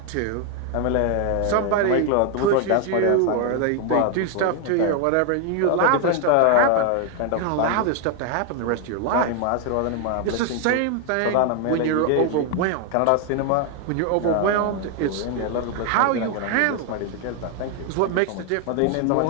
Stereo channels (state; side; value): different; both; correlation 0.01